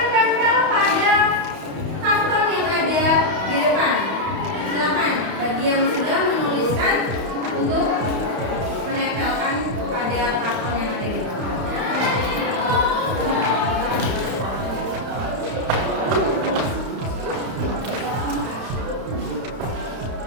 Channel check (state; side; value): late; left; 31 ms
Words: tempel pada karton yang ada di depan. Silakan bagi yang sudah menuliskan untuk menempelkan pada karton yang ada di depan.